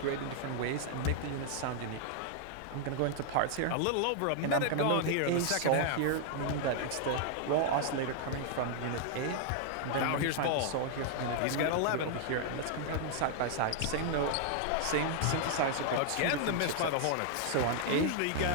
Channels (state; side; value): different; both; correlation 0.00